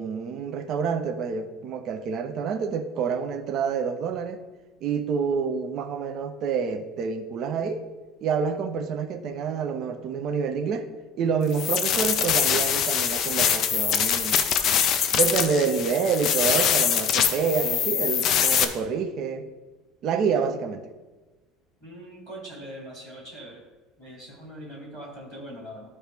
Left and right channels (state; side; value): normal; both; correlation 0.42